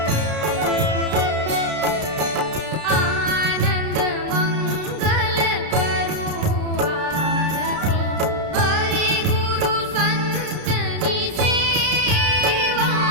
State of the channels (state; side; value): late; left; 33 ms